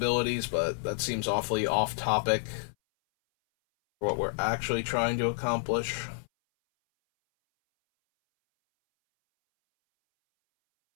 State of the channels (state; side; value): silent; right; 58 dB below the other